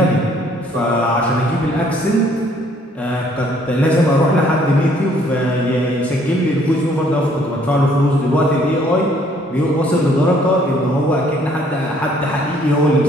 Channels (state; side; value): normal; both; correlation 0.63